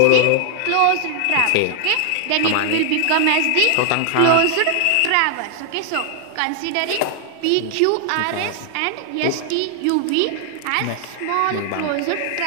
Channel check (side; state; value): both; different; correlation 0.00